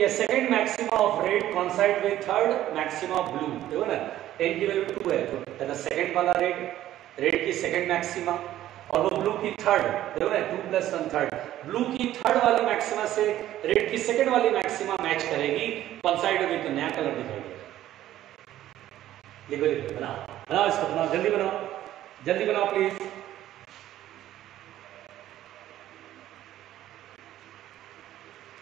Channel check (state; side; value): quieter; left; 13.2 dB